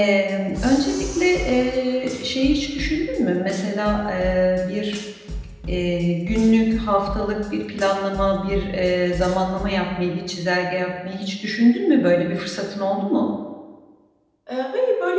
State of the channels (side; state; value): both; identical; correlation 1.00